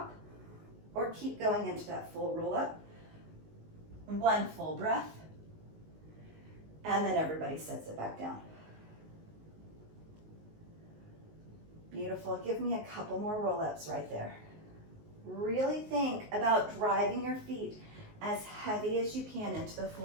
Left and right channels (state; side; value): late; left; 19 ms